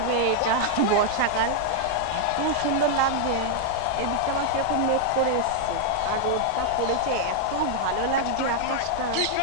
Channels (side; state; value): both; different; correlation -0.01